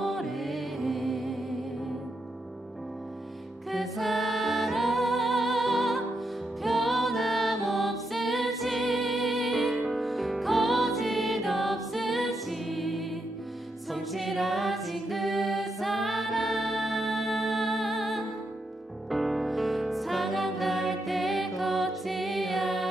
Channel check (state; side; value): normal; both; correlation 0.82